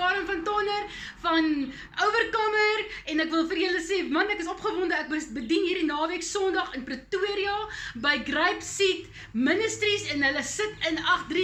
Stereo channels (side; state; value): both; identical; correlation 1.00